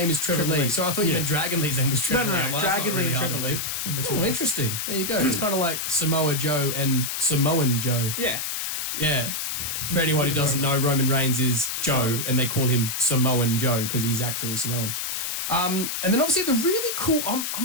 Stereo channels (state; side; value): noise; left; hiss, 3 dB below the sound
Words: is Trevor Trevor Lee. Lee. So I thought you Yeah. meant Dragon Lee's name was Trevor Lee. no, I'm like, that's not Dragon Lee really and hard to Trevor Lee. believe. are the two Oh, names. interesting. There you go. It's kind of like Samoa Joe and Samoan Joe. Yeah. Yeah. For anyone who doesn't know, Roman Reigns is Joe, and they call him Samoan Joe because he's actually Samoan. And then obviously the really cool.